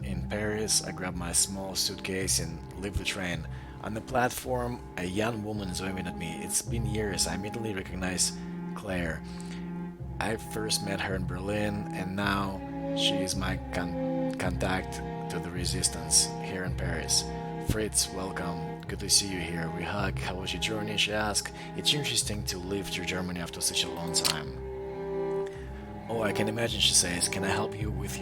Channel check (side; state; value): both; identical; correlation 1.00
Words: in Paris. I grab my small suitcase and leave the train. On the platform, a young woman is waving at me. It's been years. I immediately recognize Claire. I first met her in Berlin, and now she is my contact to the resistance here in Paris. Fritz, welcome. Good to see you here. We hug. How was your journey? She asked. It's interesting to leave to Germany after such a long time. Oh, I can imagine, she says. Can I help you with